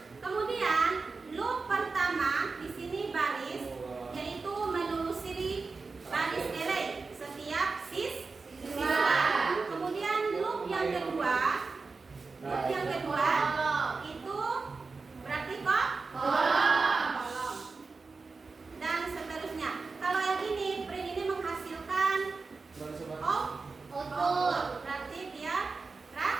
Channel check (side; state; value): left; quieter; 4.2 dB